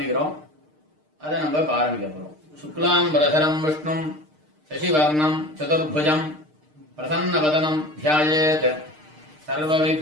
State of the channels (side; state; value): left; late; 6.6 ms